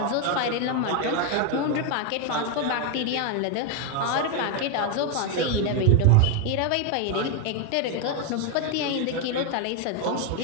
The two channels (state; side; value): different; both; correlation 0.01